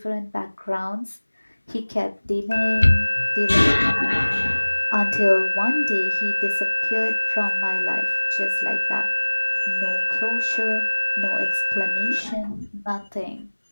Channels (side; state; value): both; inverted; correlation -1.00